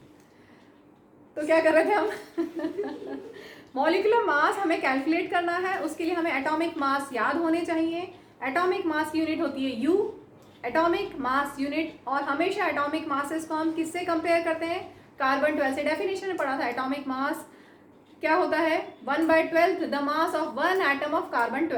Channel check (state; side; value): identical; both; correlation 1.00